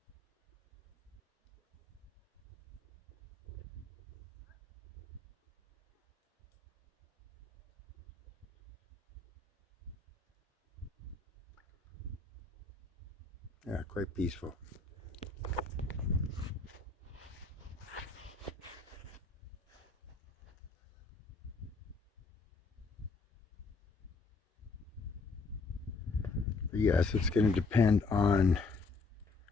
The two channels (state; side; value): quieter; right; 4.0 dB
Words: Yeah, quite peaceful. But yes, it's going to depend on,